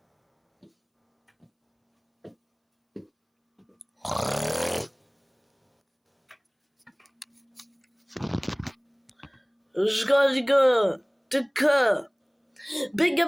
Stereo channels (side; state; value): both; identical; correlation 1.00